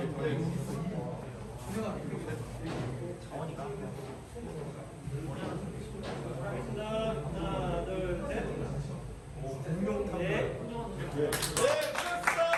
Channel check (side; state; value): both; identical; correlation 1.00